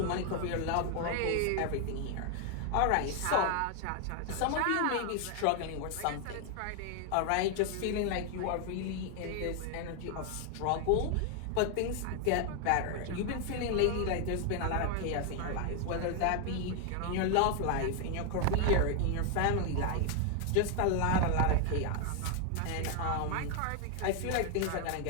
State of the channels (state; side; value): different; both; correlation 0.00